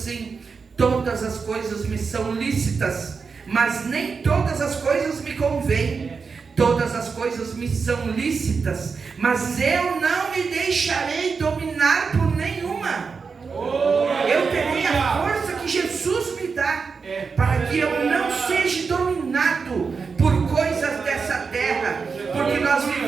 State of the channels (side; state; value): left; quieter; 5.2 dB